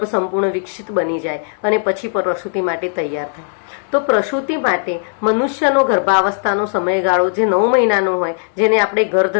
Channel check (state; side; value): silent; right; 63 dB below the other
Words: સંપૂર્ણ વિકસિત બની જાય અને પછી પ્રસૂતિ માટે તૈયાર થાય. તો પ્રસૂતિ માટે મનુષ્યનો ગર્ભાવસ્થાનો સમયગાળો જે 9 મહિનાનો હોય, જેને આપણે